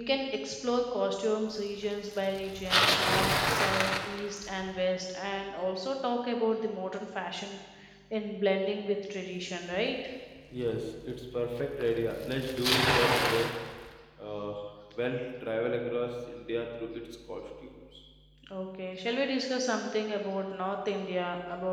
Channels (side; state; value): both; identical; correlation 1.00